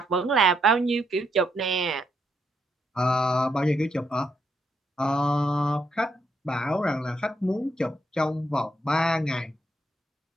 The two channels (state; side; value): normal; both; correlation 0.77